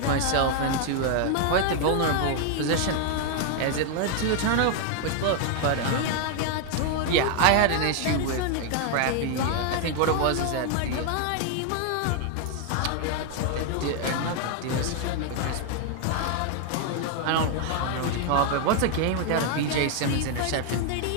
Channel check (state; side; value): different; both; correlation 0.00